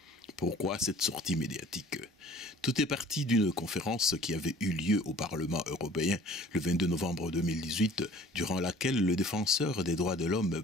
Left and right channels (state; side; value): normal; both; correlation 0.50